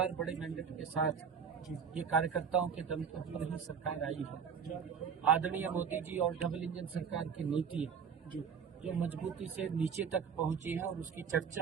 बड़े मैंडेट के साथ ये कार्यकर्ताओं के दम पर ही सरकार आई है। आदरणीय मोदी जी और डबल इंजन सरकार की नीति जो मजबूती से नीचे तक पहुंची है और उसकी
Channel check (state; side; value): quieter; left; 6.8 dB